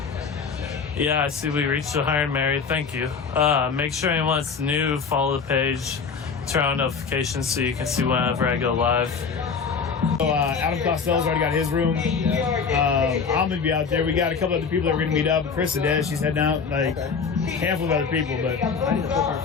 Yeah, I see we reached the Hired Mary. Thank you. Make sure anyone that's new, follow the page, turn on notifications so you can see whenever I go live. So, Adam Costello's already got his room. I'm gonna be out there. We got a couple other people that are gonna meet up. Chris Adez, she's heading out. Like a handful of other people, but I need to book our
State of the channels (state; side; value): quieter; right; 5.7 dB